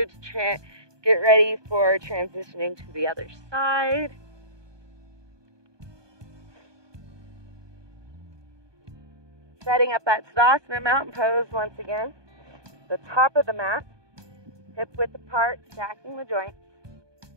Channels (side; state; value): left; late; 1.2 ms